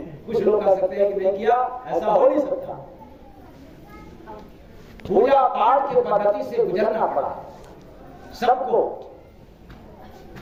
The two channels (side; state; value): both; identical; correlation 1.00